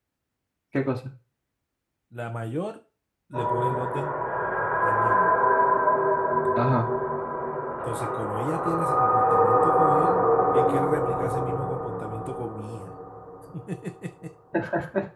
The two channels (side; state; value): both; identical; correlation 1.00